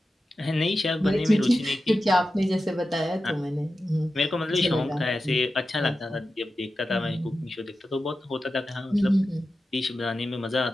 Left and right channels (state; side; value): normal; both; correlation 0.92